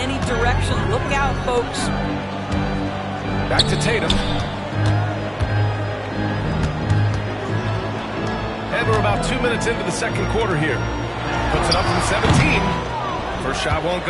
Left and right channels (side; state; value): both; identical; correlation 1.00